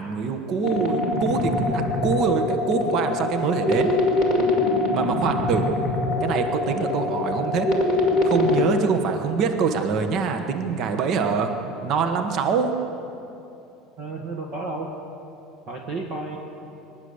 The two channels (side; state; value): both; normal; correlation 0.38